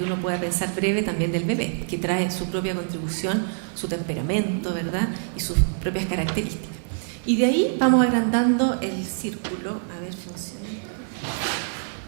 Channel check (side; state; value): left; silent; 62 dB below the other